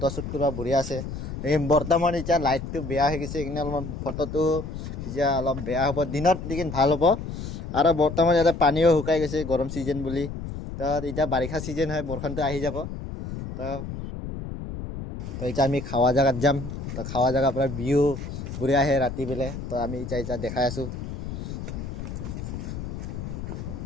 কৰিব বঢ়িয়া আছে। এই বৰ্তমান এতিয়া লাইটটো বেয়া হৈ গৈছে, সেইকাৰণে অলপমান ফটোটো এতিয়া অলপ বেয়া হ'ব, দিনত লেকিন ভাল হ'ব। আৰু বৰ্তমান ইয়াতে পানীও শুকাই গৈছে গৰম ছিজন বুলি। তো এতিয়া বাৰিষা ছিজন হয়, বৰষুণটো আহি যাব। তো এতিয়া আমি খাৱা জেগাত যাম। তো খাৱা জেগাৰ পৰা ভিউ বঢ়িয়া আহে ৰাতি বেলে। তো আমি এতিয়া দেখাই আছোঁ।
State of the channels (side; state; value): left; noise; rumble, 7 dB below the sound